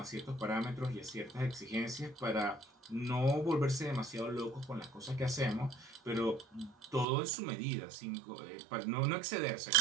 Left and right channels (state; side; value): drops out; left; at 7.1 s